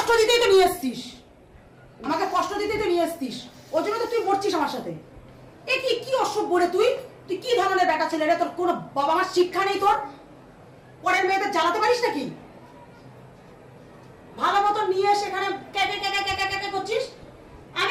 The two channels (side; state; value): both; identical; correlation 1.00